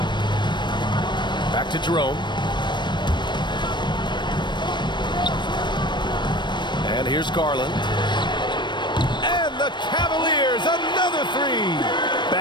Back to Jerome. And here's Garland. And the Cavaliers, another three.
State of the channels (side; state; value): right; late; 0.22 ms